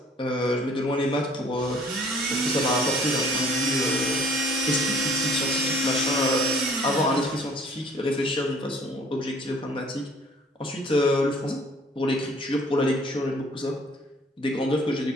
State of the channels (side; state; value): both; normal; correlation 0.55